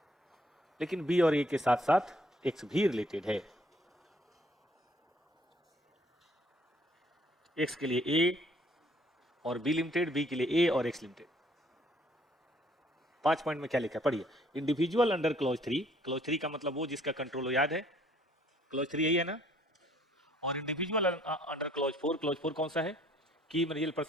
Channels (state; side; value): normal; both; correlation 0.62